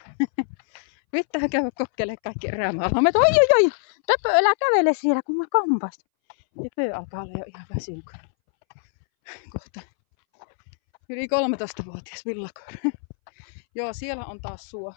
Vittää käydä kokeilemaan kaikki erämaalammet. Oi! Töpö, älä kävele siellä, kun mä kampaisin. Töpö alkaa olla jo ihan väsynyt. Kohta yli 13-vuotias villakoira. Joo, siellä on taas suo.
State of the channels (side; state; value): right; silent; 62 dB below the other